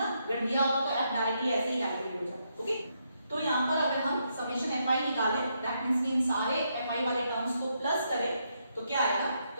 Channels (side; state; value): both; inverted; correlation -0.78